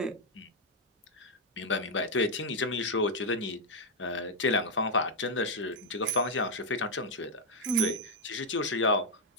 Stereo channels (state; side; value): normal; both; correlation -0.01